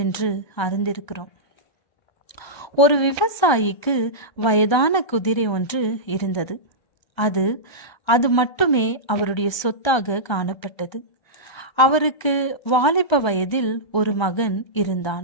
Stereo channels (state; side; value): late; right; 1.3 ms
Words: அறிந்திருக்கிறோம். ஒரு விவசாயிக்கு வயதான குதிரை ஒன்று இருந்தது. அது மட்டுமே அவருடைய சொத்தாக காணப்பட்டது. அவருக்கு வாலிப வயதில் ஒரு மகன்